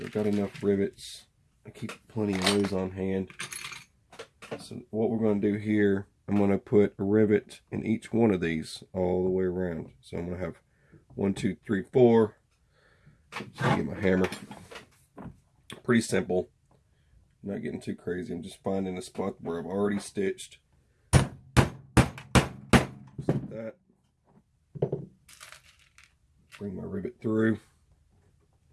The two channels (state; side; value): identical; both; correlation 1.00